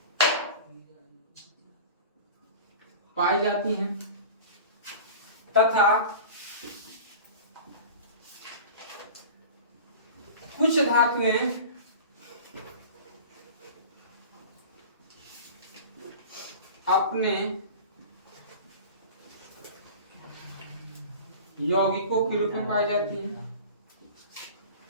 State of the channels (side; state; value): both; inverted; correlation -0.37